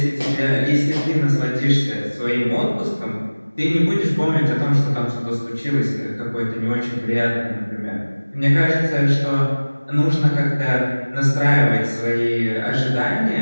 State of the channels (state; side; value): inverted; both; correlation -1.00